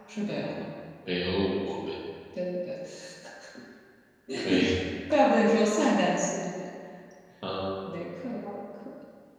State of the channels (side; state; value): both; identical; correlation 1.00